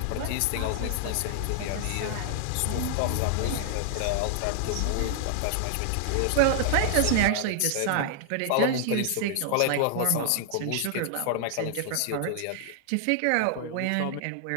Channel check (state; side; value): different; both; correlation -0.01